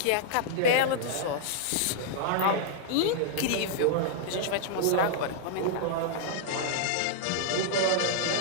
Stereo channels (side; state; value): both; different; correlation -0.01